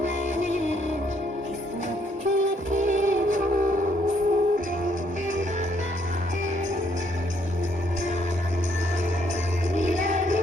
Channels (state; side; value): normal; both; correlation 0.70